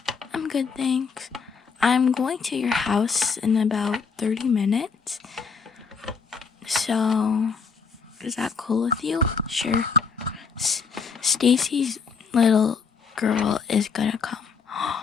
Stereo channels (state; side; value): quieter; right; 5.5 dB